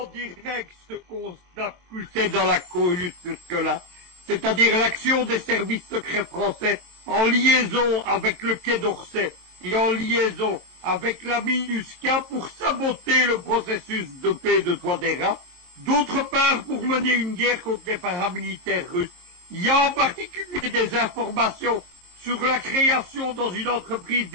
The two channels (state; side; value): late; left; 23 ms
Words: direct ce qu'on a poussé dans la cohue jusque-là, c'est-à-dire l'action des services secrets français en liaison avec le Quai d'Orsay et en liaison avec la MINUSCA pour saboter le processus de paix de Touadéra, d'autre part pour mener une guerre contre les paramilitaires russes. Il y a en particulier des informations sur la création dans une entreprise